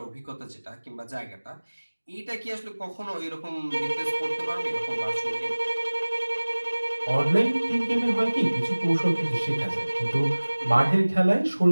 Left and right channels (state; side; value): inverted; both; correlation -1.00